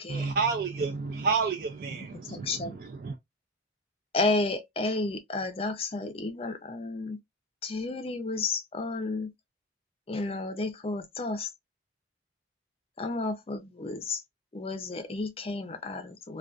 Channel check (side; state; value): both; normal; correlation 0.21